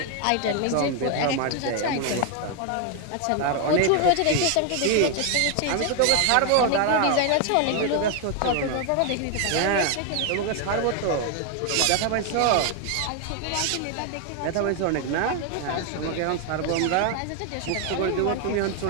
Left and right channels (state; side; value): different; both; correlation 0.01